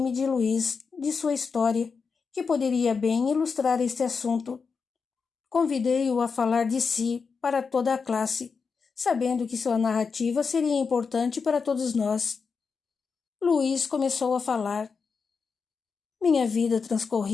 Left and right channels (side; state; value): right; quieter; 5.3 dB